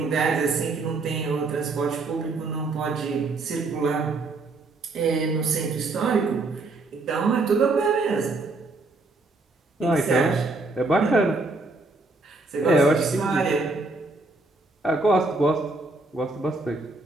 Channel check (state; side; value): quieter; left; 3.4 dB